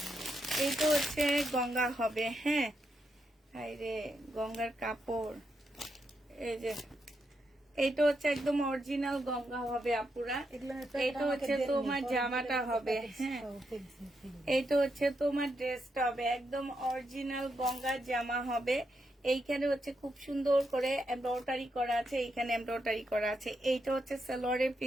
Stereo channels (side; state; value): both; normal; correlation 0.82